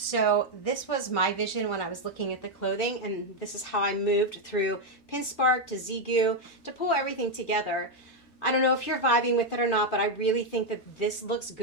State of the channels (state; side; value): normal; both; correlation 0.03